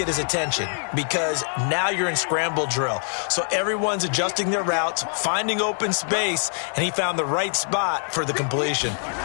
his attention, because now you're in scramble drill. So everyone's adjusting their routes, finding open space, and he found the right spot for the completion.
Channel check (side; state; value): right; silent; digital silence